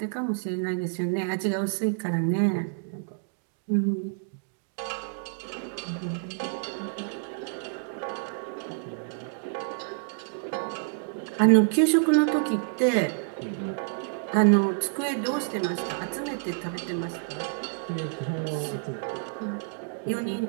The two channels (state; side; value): silent; left; digital silence